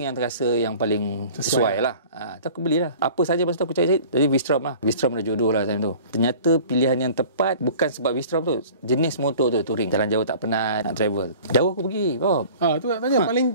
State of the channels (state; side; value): inverted; both; correlation -0.45